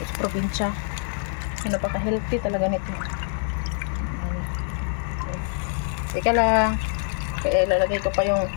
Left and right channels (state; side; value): silent; right; 62 dB below the other